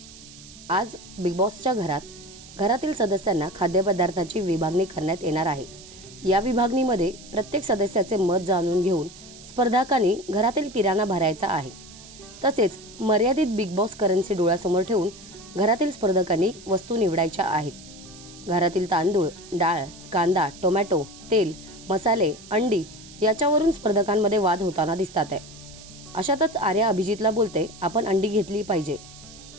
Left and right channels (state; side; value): noise; right; hiss, 19 dB below the sound